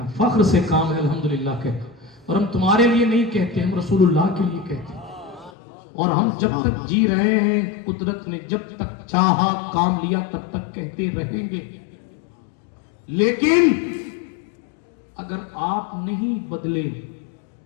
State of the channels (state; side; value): drops out; right; at 5.5 s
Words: فخر سے کام ہے الحمدللہ کہنا, اور ہم تمہارے لیے نہیں کہتے, ہم رسول اللہ کے لیے کہتے ہیں. اور ہم جب تک جی رہے ہیں, قدرت نے جب تک چاہا کام لیا تب تک کہتے رہیں گے. لیکن اگر آپ نہیں بدلے,